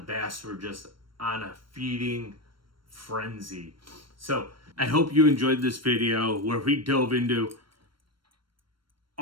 were just on a feeding frenzy. So I hope you enjoyed this video where we dove into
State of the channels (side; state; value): left; late; 0.73 ms